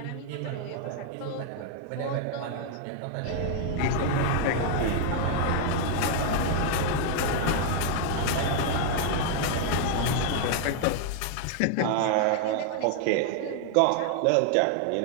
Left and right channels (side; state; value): both; different; correlation 0.00